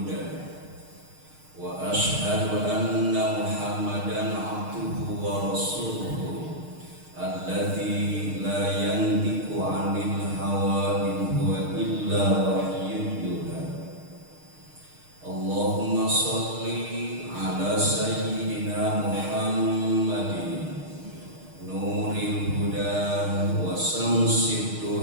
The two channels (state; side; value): late; left; 6.5 ms